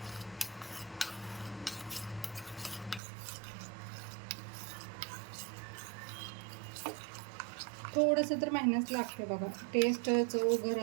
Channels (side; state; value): left; drops out; at 3.0 s